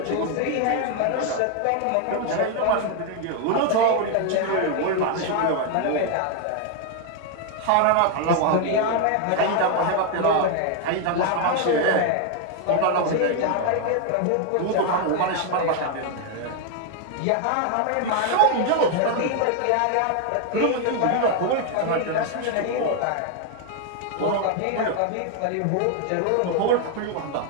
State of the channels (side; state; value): both; different; correlation 0.01